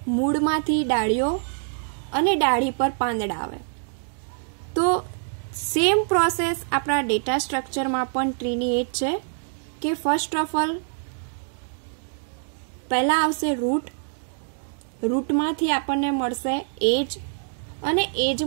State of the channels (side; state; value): left; silent; digital silence